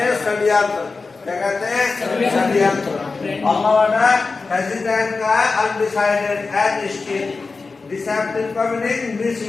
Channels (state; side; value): quieter; right; 4.1 dB